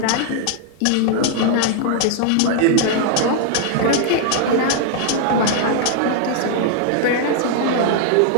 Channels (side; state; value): both; different; correlation 0.00